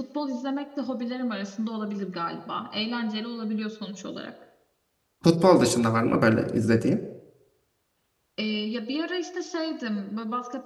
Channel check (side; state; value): both; identical; correlation 1.00